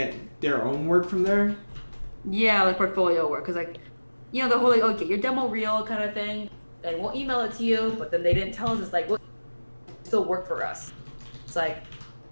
their own work from there? Yeah, like portfolio work. Because, like, you know, the whole, like, oh, get your demo reel kind of thing, and we'll email it to you, but then they didn't tell us. It's like, well, you still work for us. It's like,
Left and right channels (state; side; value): inverted; both; correlation -1.00